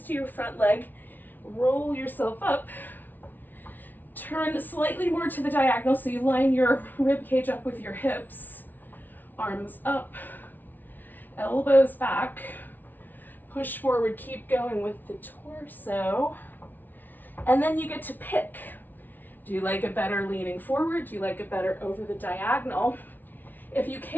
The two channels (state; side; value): late; right; 0.086 ms